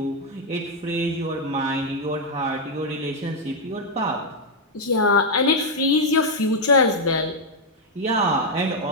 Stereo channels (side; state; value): both; normal; correlation 0.00